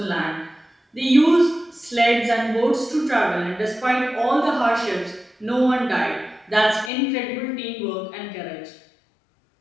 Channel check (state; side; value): drops out; right; at 6.9 s